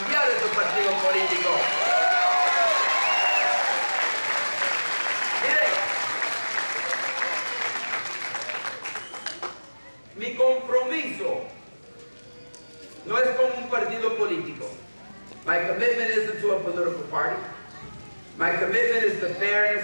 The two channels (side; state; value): both; inverted; correlation -1.00